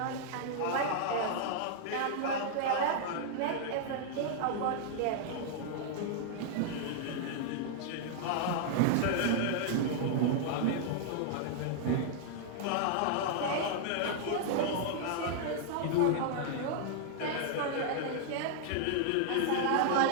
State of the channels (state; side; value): different; both; correlation -0.01